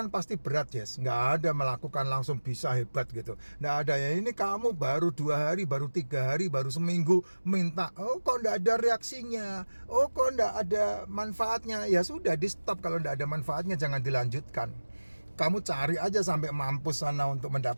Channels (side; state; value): both; inverted; correlation -1.00